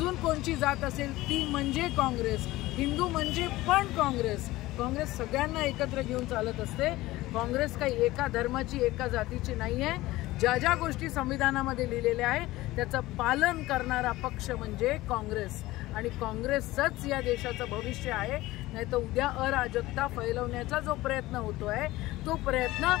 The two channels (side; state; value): right; quieter; 18.1 dB